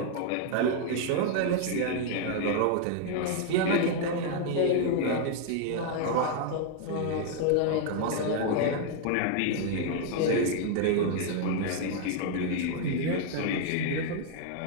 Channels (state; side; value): different; both; correlation 0.00